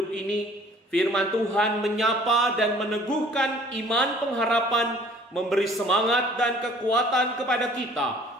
ini, firman Tuhan menyapa dan meneguhkan iman pengharapan, memberi semangat dan kekuatan kepada kita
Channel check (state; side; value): normal; both; correlation 0.53